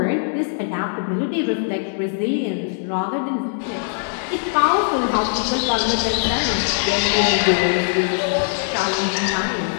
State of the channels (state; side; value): silent; right; digital silence